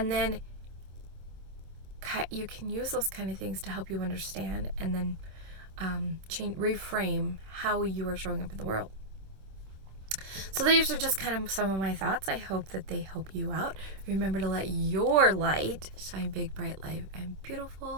then you can use those kind of things to help you understand, and then reframe how you are showing up in the world. So these are just kind of some of my thoughts. I hope that they help you out. Remember to let your light shine big, bright, light, and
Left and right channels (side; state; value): left; late; 26 ms